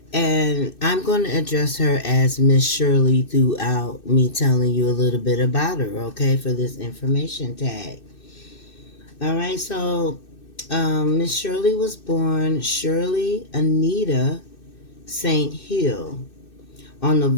And I'm going to address her as Miss Shirley throughout me telling you a little bit about her, okay, for this information tag. All right, so Miss Shirley was born Shirley Anita St. Hill on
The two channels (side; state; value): right; late; 2.6 ms